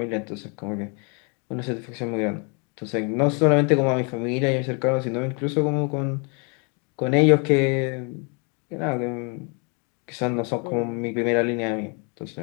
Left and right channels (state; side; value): quieter; right; 35.5 dB